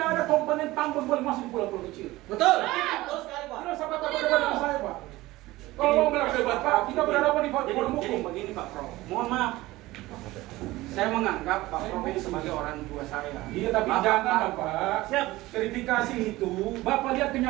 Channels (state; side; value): quieter; left; 18.5 dB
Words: ada komponen tambang boleh masuk di pulau-pulau kecil. Betul. sekali Pak. Tidak usah Bapak berdebat dengan saya Pak. Kalau mau berdebat Pak, kita berhadapan di forum Jadi hukum. begini Pak Prof, mohon maaf. Saya menganggap Pak Prof ini sebagai orang tua saya. Iya tapi jangan Bapak. Siap. Verifikasi itu, Bapak lihat